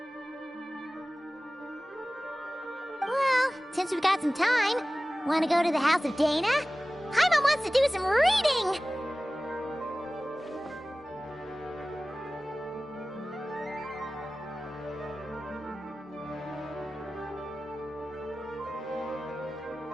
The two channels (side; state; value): both; normal; correlation 0.97